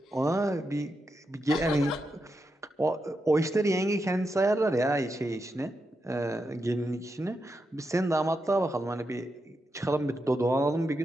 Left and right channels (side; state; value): both; normal; correlation 0.86